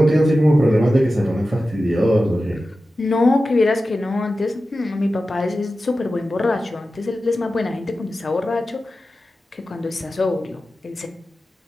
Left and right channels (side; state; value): both; normal; correlation 0.93